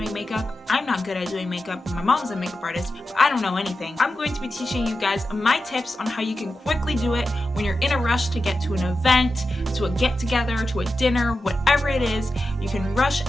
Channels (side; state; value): both; normal; correlation 0.91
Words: makeup. I'm not good at doing makeup. My mom's a makeup artist, but I don't know anything. I'm going to be teaching you guys my tips on how you can quickly do it when you're in a rush to get to an event, to a get-together, to a dinner, whatever it is. You can rush